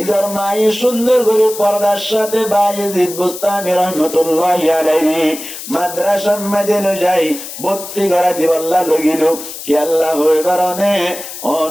মায়ের সুন্দর করে পর্দার সাথে বায়েজিদ বুস্তামি রহমতুল্লাহি আলাইহি মাদ্রাসা মাইদে লই যাই ভর্তি করা দিবাল্লাহ লগিল কি আল্লাহ হই কারণে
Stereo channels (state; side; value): noise; left; hiss, 11 dB below the sound